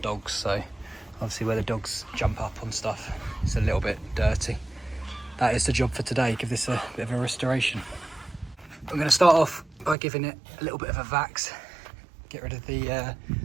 dogs, so obviously where the dogs jump up on stuff, it's a little bit dirty. That is the job for today, give this a bit of a restoration. I'm going to start off by giving it a little bit of a vax, get rid of the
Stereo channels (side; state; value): left; drops out; at 10.0 s